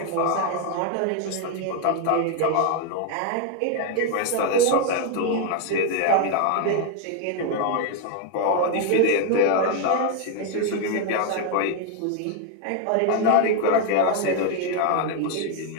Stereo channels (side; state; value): both; different; correlation 0.00